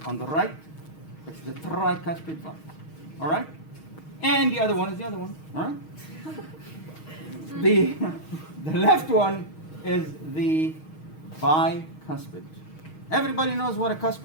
On the right, it's the tricuspid valve. All right? And the other one is the other one. All right? the left one is the bicuspid. Everybody knows what a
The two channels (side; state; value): right; late; 6.4 ms